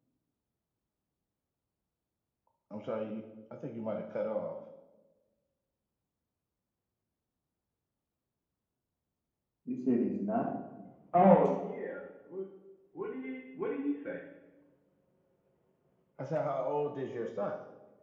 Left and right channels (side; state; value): both; identical; correlation 1.00